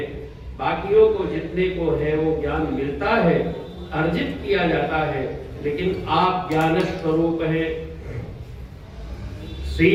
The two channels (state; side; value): identical; both; correlation 1.00